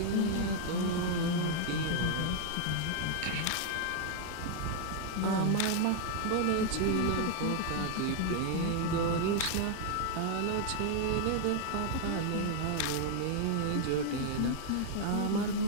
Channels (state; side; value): different; both; correlation 0.00